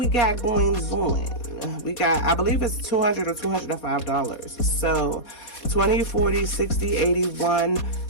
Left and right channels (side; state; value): right; late; 4.2 ms